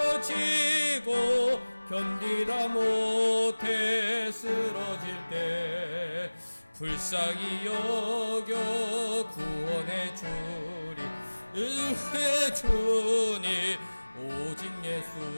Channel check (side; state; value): both; inverted; correlation -1.00